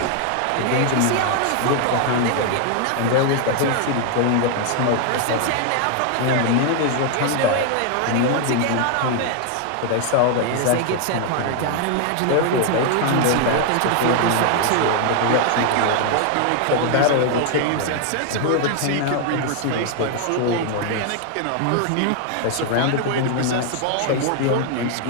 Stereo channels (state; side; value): different; both; correlation 0.00